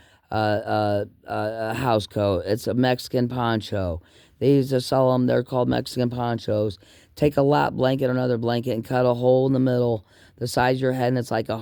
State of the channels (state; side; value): identical; both; correlation 1.00